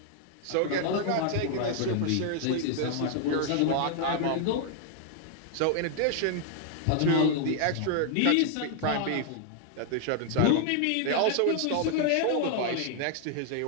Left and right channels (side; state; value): both; different; correlation 0.00